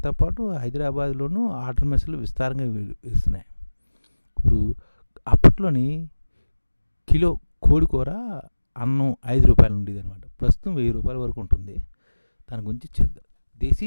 పాటు హైదరాబాద్లోనూ ఆర్డర్ మెస్సులు విస్తారంగా ఇస్తున్నాయి. ఇప్పుడు అప్పట్లోని కిలో కోడికూర అన్నం 5 రూపాయలు ఉండేది అనమాట. ప్రస్తుతం 1000 రూపాయల వరకు ఉంటుంది. దాని గురించి చేద్దాం. దేశీ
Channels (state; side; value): inverted; both; correlation -1.00